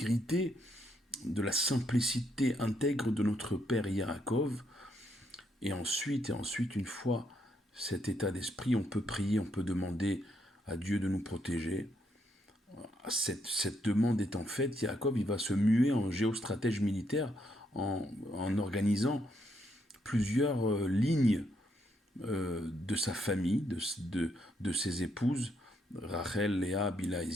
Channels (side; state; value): both; normal; correlation 0.76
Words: de la simplicité intègre de notre Père Yaakov. Et ensuite, une fois cet état d'esprit, on peut prier, on peut demander à Dieu de nous protéger. Cette demande étant faite, Yaakov il va se muer en géostratège militaire en organisant plusieurs lignes de sa famille, de ses épouses, Rachel, Léa, Bila et